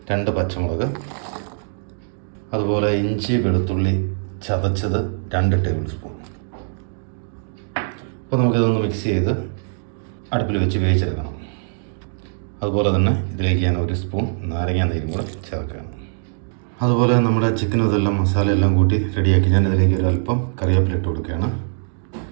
2 പച്ചമുളക്, അതുപോലെ ഇഞ്ചി വെളുത്തുള്ളി ചതച്ചത് 2 ടേബിൾ സ്പൂൺ. അപ്പോൾ നമുക്കിതൊന്ന് മിക്സ് ചെയ്ത് അടുപ്പിൽ വെച്ച് വേവിച്ചെടുക്കണം. അതുപോലെ തന്നെ ഇതിലേക്ക് ഞാൻ 1 സ്പൂൺ നാരങ്ങ നീരും കൂടെ ചേർക്കുകയാണ്. അതുപോലെ നമ്മുടെ ചിക്കനും ഇതെല്ലാം മസാലയെല്ലാം കൂട്ടി റെഡിയാക്കി ഞാൻ ഇതിലേക്ക് ഒരു അല്പം കറിവേപ്പില ഇട്ട് കൊടുക്കുകയാണ്.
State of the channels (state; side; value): silent; left; digital silence